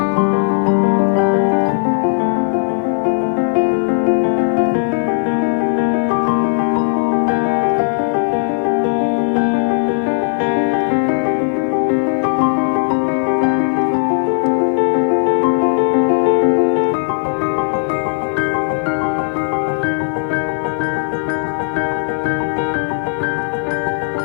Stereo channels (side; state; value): right; silent; digital silence